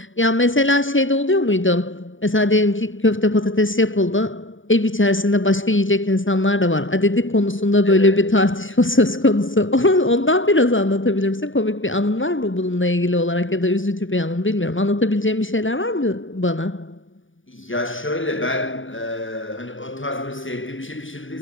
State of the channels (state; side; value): late; right; 0.57 ms